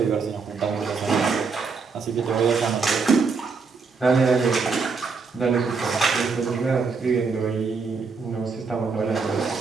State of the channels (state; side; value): quieter; left; 4.8 dB